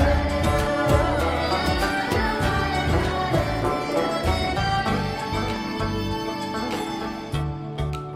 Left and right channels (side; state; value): both; identical; correlation 1.00